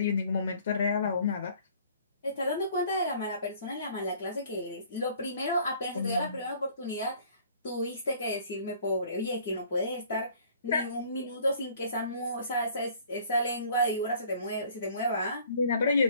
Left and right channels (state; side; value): inverted; both; correlation -0.55